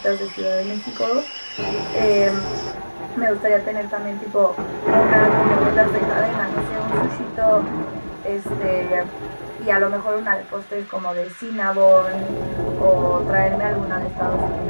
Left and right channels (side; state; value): both; inverted; correlation -1.00